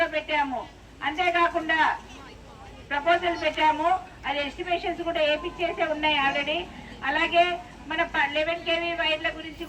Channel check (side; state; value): both; identical; correlation 1.00